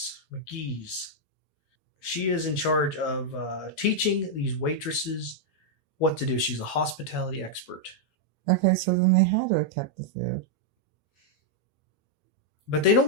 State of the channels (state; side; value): late; right; 1.4 ms